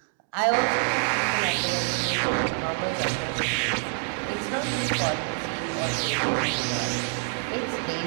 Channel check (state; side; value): silent; left; 61 dB below the other